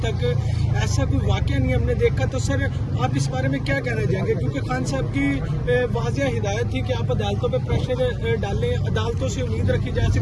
تک ایسا کوئی واقعہ نہیں ہم نے دیکھا، تو سر آپ اس بارے میں کیا کہنا چاہیں گے؟ کیونکہ خان صاحب کی واضح ہدایت تھی کہ آپ عدالتوں پہ پریشر ڈالیں، عدالتوں سے امید رکھی جا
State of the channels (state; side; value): identical; both; correlation 1.00